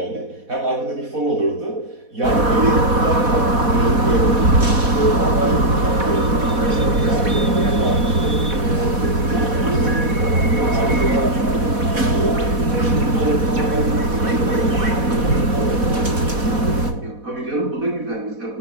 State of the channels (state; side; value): late; left; 4.1 ms